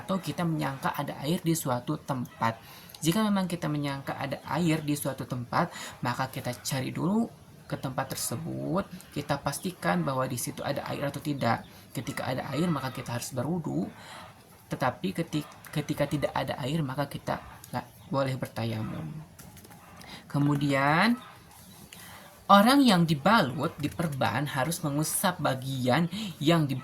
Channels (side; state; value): both; identical; correlation 1.00